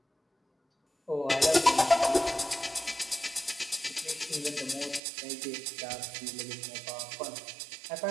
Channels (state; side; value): drops out; left; at 5.0 s